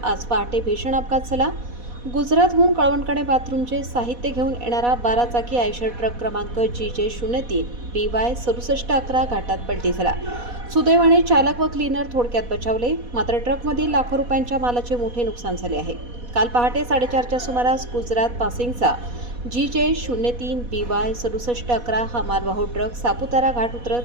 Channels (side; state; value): left; late; 4.1 ms